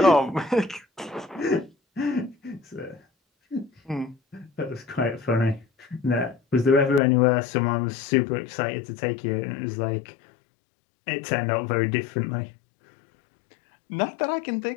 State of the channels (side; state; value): right; drops out; at 7.0 s